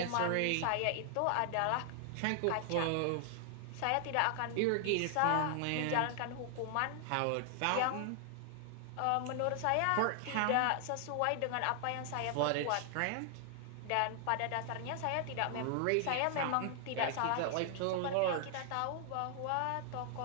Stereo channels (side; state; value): both; different; correlation 0.00